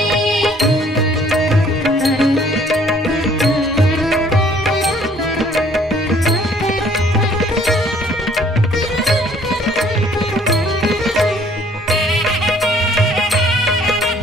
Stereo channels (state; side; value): normal; both; correlation 0.59